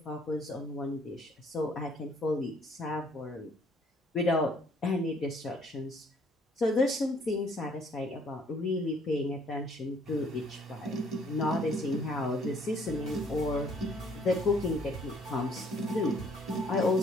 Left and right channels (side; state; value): both; normal; correlation 0.62